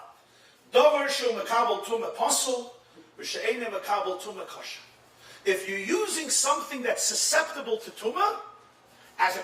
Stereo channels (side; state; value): both; identical; correlation 1.00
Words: Dover shel mekabel tumah pasul, v'she'enim mekabel tumah kosher. If you're using something that's susceptible to tumah as a